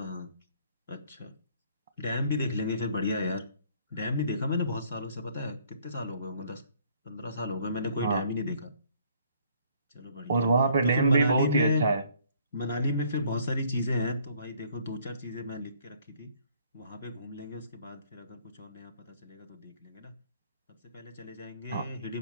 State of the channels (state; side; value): inverted; both; correlation -0.61